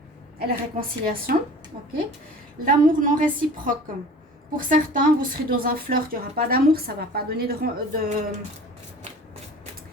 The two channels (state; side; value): normal; both; correlation 0.42